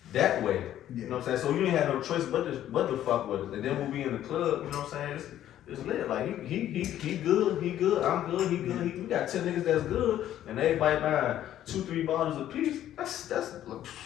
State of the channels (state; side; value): quieter; right; 11.9 dB